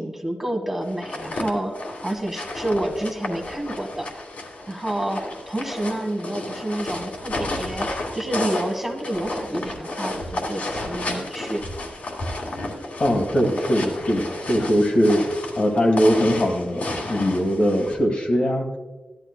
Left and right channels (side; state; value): both; normal; correlation 0.91